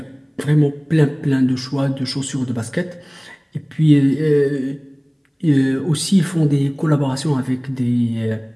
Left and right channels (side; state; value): both; identical; correlation 1.00